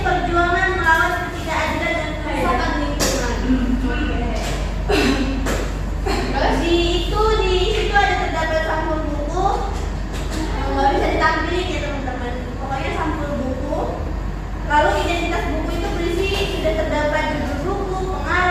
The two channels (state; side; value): identical; both; correlation 1.00